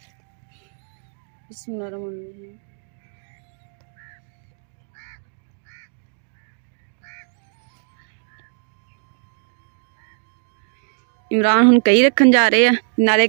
बिस्मिल्लाहिर्रहमानिर्रहीम। इमरान ਹੁਣ ਕਈ ਰੱਖਣ ਜਾ ਰਹੇ ਆ, ਨਾਲੇ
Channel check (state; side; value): silent; left; digital silence